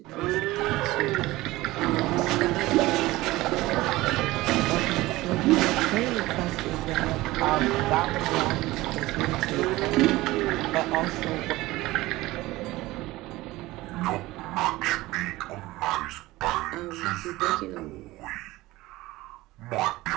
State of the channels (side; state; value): left; quieter; 18.7 dB